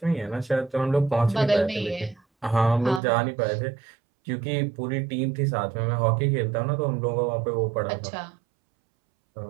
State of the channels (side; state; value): left; drops out; at 3.0 s